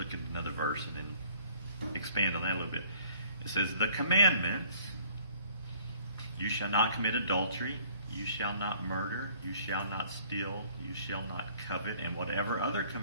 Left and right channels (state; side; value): inverted; both; correlation -0.56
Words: at another verse and then expand on that a little bit. It says, the commandments: you shall not commit adultery, you shall not murder, you shall not steal, you shall not covet, and whatever other